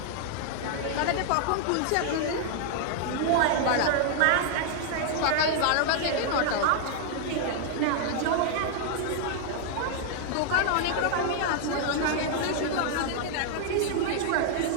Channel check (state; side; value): different; both; correlation 0.00